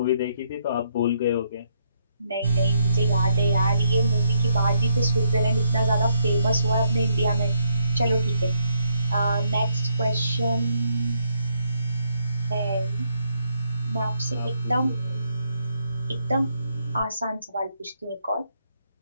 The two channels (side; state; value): both; inverted; correlation -0.75